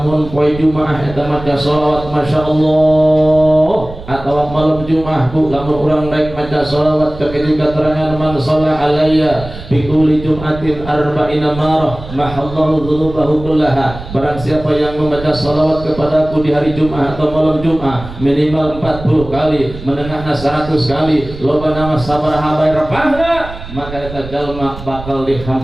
poe Jumaah eta maca shalawat Masya Allah, atau malam Jumaah bu lamun urang naik maca shalawat kekitu keterangan man shalla alayya bi kulli jum'atin arba'ina marah mahallahu dzunubahu kullaha. Barang siapa yang membaca shalawat kepadaku di hari Jumaah atau malam Jumaah minimal 40 kali, menengahna 100 kali, loba nama sabaraha bae repahna, maka eta jalma bakal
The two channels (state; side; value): noise; right; rumble, 13 dB below the sound